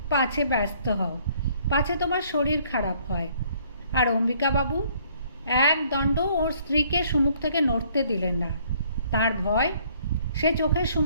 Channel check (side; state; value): both; inverted; correlation -0.62